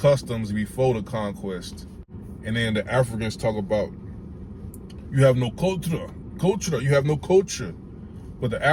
before the conquest. And then the Africans talk about, you have no culture, you have no culture. But the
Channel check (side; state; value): both; identical; correlation 1.00